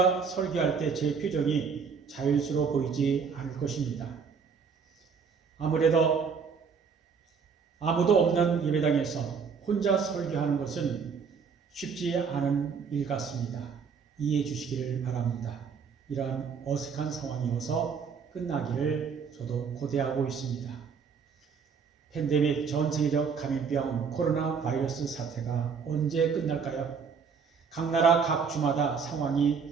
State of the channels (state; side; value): quieter; left; 5.9 dB